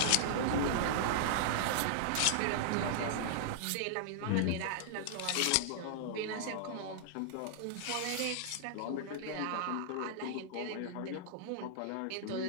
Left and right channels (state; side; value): different; both; correlation -0.01